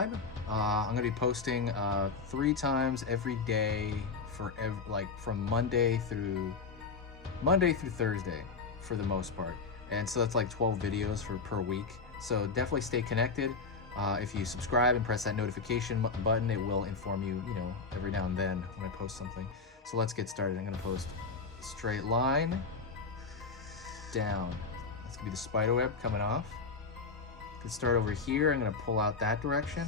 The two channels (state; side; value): quieter; right; 4.6 dB